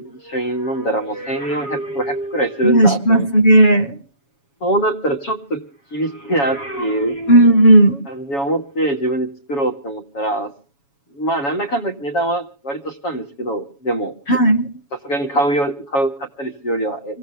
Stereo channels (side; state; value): right; late; 7.2 ms